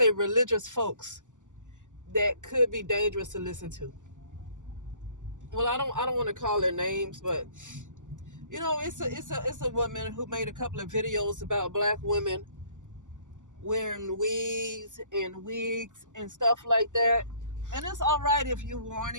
religious folks that could be dangerous to listen to. Well, I don't want to call their names, but it's a woman who made a couple of videos about black women wearing wigs and stuff like that. And it's all right if you're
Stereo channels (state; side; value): late; left; 0.86 ms